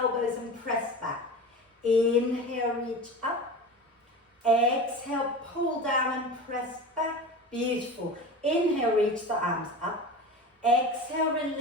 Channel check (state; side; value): normal; both; correlation 0.31